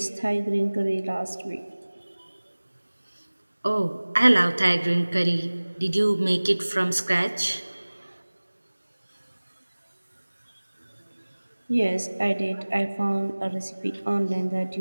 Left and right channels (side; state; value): both; inverted; correlation -1.00